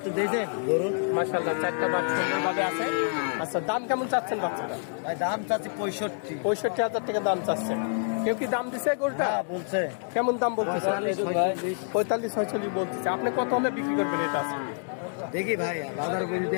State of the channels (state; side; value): silent; right; 60 dB below the other